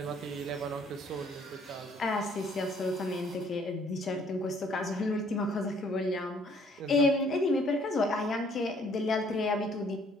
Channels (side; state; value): both; normal; correlation 0.61